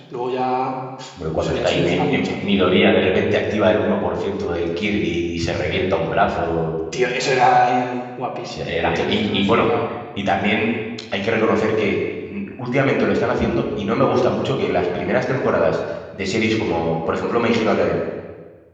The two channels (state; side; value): identical; both; correlation 1.00